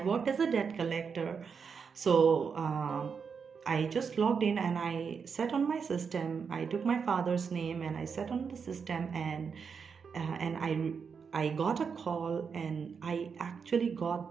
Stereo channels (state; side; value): quieter; left; 6.0 dB